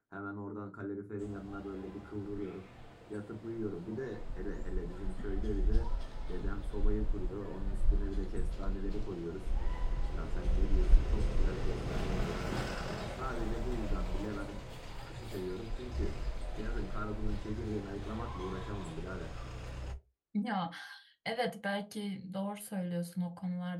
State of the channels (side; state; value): both; identical; correlation 1.00